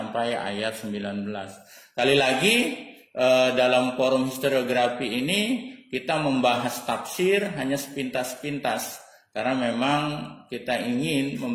ayat 19. Kali lagi dalam forum historiografi ini kita membahas tafsir hanya sepintas-pintas. Karena memang kita ingin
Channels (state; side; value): identical; both; correlation 1.00